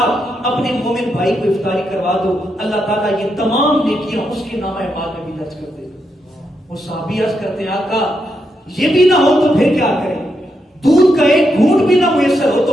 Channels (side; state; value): both; normal; correlation 0.82